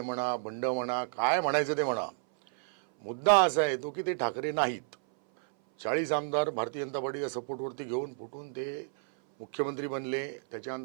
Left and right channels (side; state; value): left; silent; 57 dB below the other